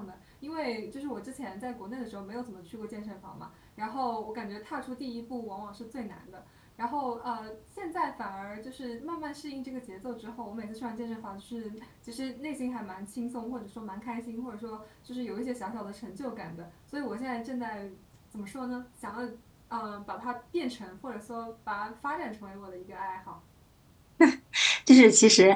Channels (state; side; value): identical; both; correlation 1.00